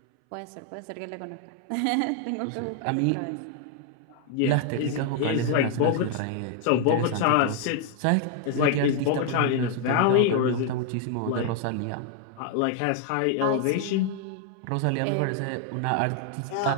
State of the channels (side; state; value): both; different; correlation 0.00